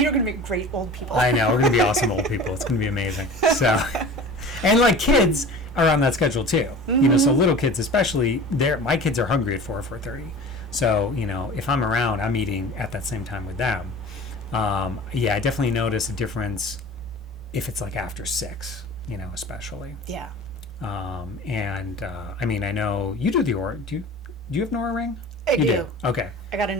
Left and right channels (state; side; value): normal; both; correlation 0.39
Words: are going to make great old people. I know, we're going to be awesome old people. It's going to be amazing. So, and like kids are on that schedule too. Mm-hmm. So little kids especially, my kids are hungry at 4:30. So, if I'm around, I'm eating at that same time with them. I definitely notice a difference if it's like after 6, especially. Yeah. I mean, I know you do the Oura. Do you have an Oura ring? I do. Okay. I got